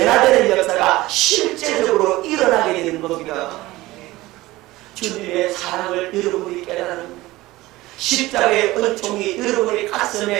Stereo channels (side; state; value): left; quieter; 18.6 dB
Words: 역사가 실제적으로 일어나게 되는 겁니다. 주님의 사랑을 여러분이 깨달은 십자가의 은총이 여러분의